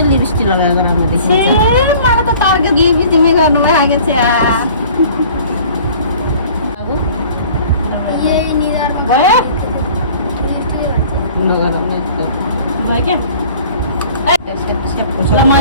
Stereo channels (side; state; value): both; inverted; correlation -0.49